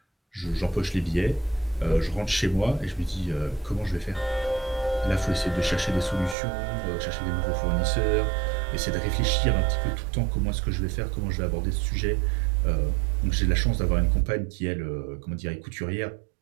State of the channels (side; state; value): left; drops out; at 6.4 s